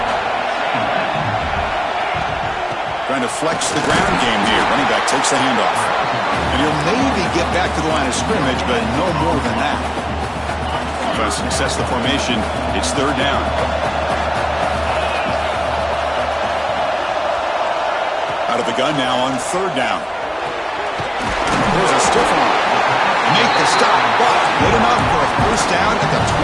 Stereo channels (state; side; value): identical; both; correlation 1.00